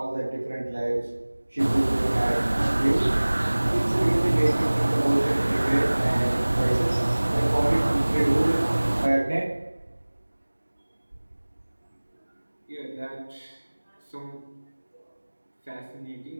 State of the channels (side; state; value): both; inverted; correlation -1.00